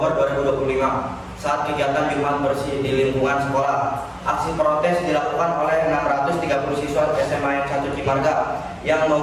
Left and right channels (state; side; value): identical; both; correlation 1.00